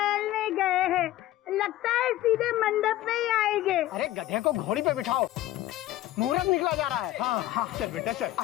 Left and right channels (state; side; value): quieter; right; 14.8 dB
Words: गए हैं, लगता है सीधे मंडप में ही आएंगे। अरे गधे को घोड़ी पे बिठाओ, मुहूर्त निकला जा रहा है। हाँ हाँ, चल बेटा चल।